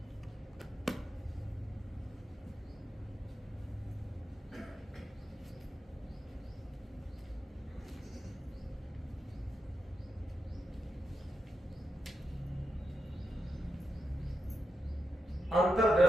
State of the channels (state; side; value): normal; both; correlation 0.87